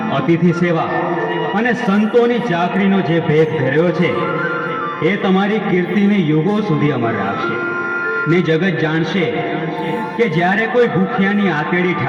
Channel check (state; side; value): identical; both; correlation 1.00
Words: અતિથિ સેવા અને સંતોની ચાકરીનો જે ભેદ ધર્યો છે એ તમારી કીર્તિને યુગો સુધી અમર રાખશે. ને જગત જાણશે કે જ્યારે કોઈ ભૂખ્યાની આતેડી